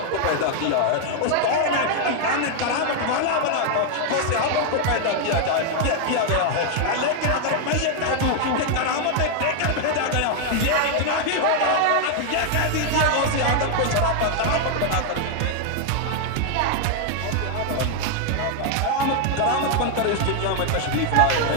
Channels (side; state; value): both; different; correlation 0.00